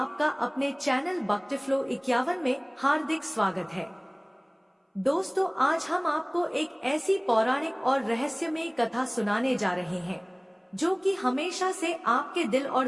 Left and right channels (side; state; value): both; identical; correlation 1.00